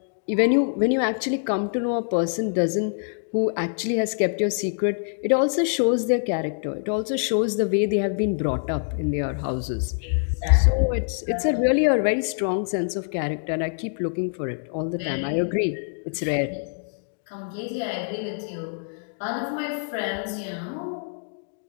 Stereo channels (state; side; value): silent; right; digital silence